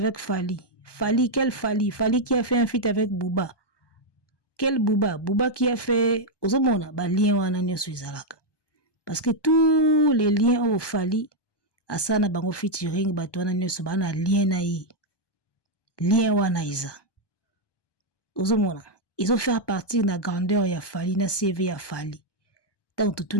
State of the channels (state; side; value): late; right; 1.2 ms